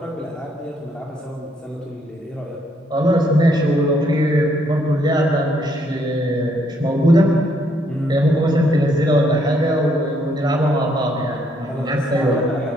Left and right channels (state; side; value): normal; both; correlation 0.71